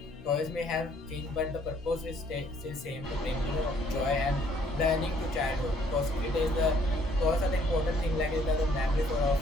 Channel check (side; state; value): both; normal; correlation 0.64